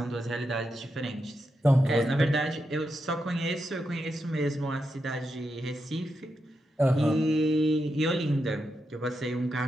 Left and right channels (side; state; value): both; normal; correlation 0.86